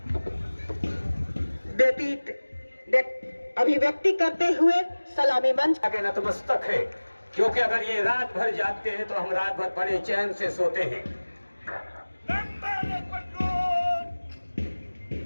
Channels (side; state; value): both; inverted; correlation -1.00